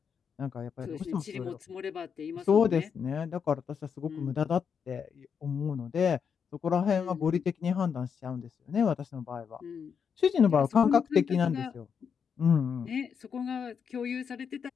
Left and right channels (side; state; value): right; quieter; 6.8 dB